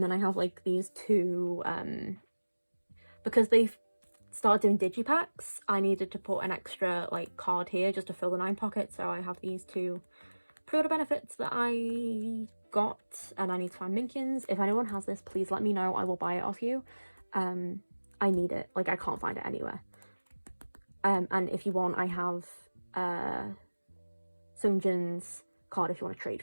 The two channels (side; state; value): both; inverted; correlation -1.00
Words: then I have like these 2, because they've started doing digipacks, I needed to put an extra like card here just to fill the 9 pockets. So I have these 2 pre-order benefits that I got, and I need to find Minkyun's. If anyone has this, please let me know. I will buy it off you. I need it. Like I can't find it anywhere. And if you want, I have Sungjin's card if you want to trade